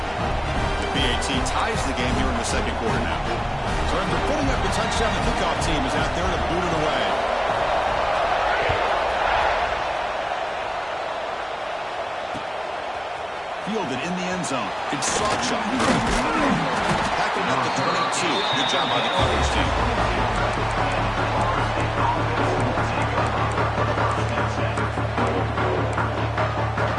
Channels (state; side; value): identical; both; correlation 1.00